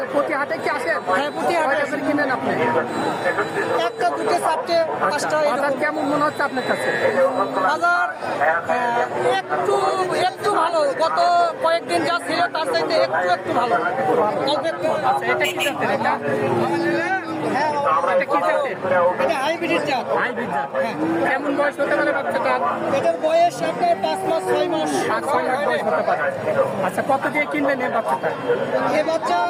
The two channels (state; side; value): identical; both; correlation 1.00